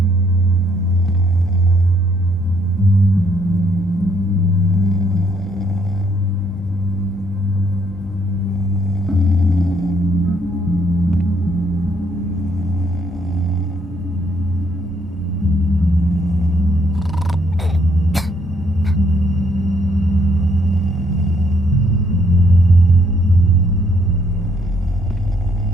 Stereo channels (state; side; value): normal; both; correlation 0.69